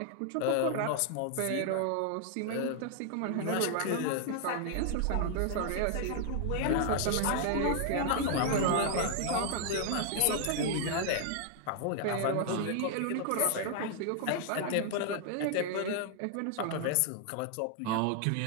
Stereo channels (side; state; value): both; different; correlation 0.00